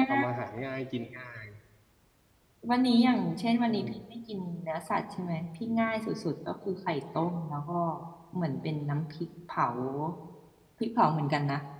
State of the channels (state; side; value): identical; both; correlation 1.00